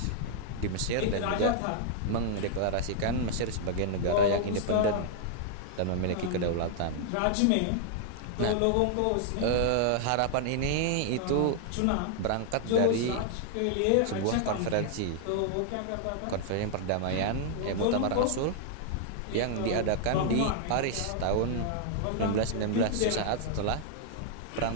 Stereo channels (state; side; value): different; both; correlation -0.01